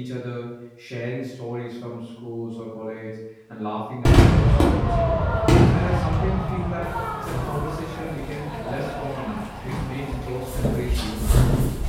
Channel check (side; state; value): both; identical; correlation 1.00